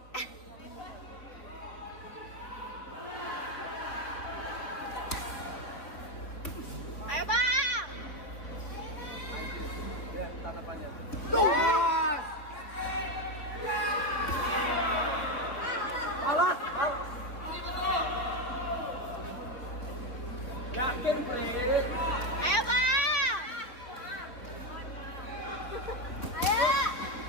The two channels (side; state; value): right; late; 3.6 ms